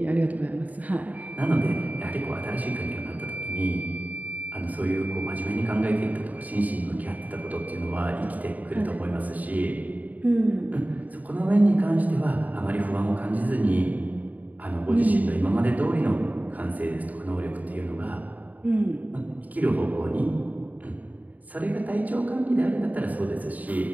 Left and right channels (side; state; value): left; late; 0.076 ms